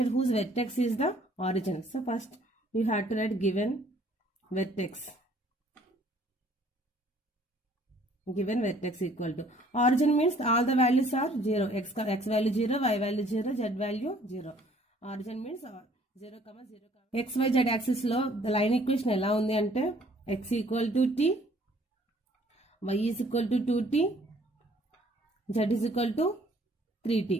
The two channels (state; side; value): normal; both; correlation 0.58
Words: whose vertex is the origin. So first you have to write given vertex. Given vertex equal to origin means all the values are 0. X value 0, y value 0, z value 0. Origin means 0, 0. X, y, z axis లో the line equation ఎలా ఉంది అంటే x equal to t, y is equal to 2t, z is equal to